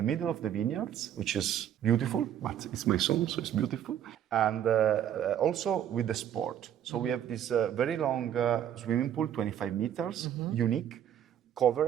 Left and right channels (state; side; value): quieter; left; 10.2 dB